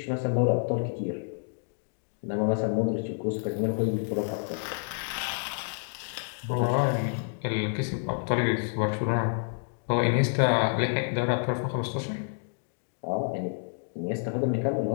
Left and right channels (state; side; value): silent; right; digital silence